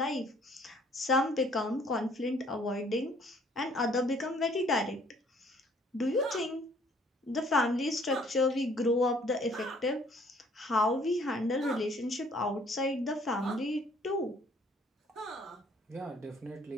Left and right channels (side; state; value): both; normal; correlation 0.60